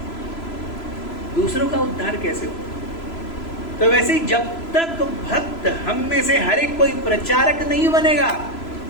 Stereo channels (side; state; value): right; late; 3.0 ms